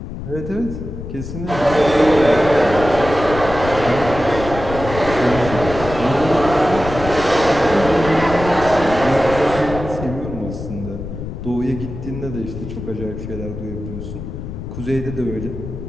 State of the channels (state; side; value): noise; left; rumble, 8 dB below the sound